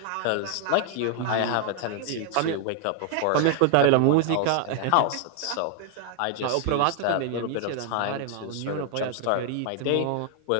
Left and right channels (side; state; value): both; different; correlation 0.00